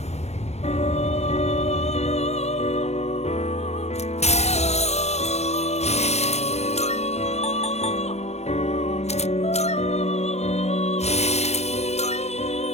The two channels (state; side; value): late; right; 0.31 ms